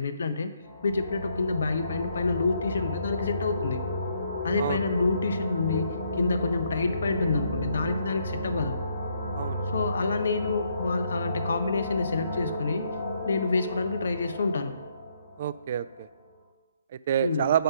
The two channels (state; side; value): inverted; both; correlation -0.72